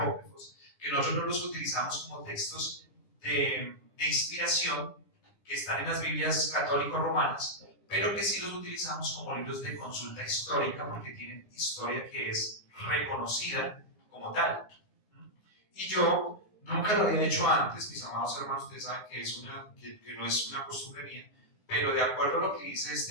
que nosotros no los utilizamos como textos de inspiración, que están en las Biblias católico-romanas, pero que sí los utilizamos como libros de consulta histórica, porque tienen historia que es reconocida como tal. Y yo nunca lo había hecho antes, mis amados hermanos, ustedes saben que no es una costumbre mía, pero de acuerdo a lo que dice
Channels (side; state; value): right; late; 10 ms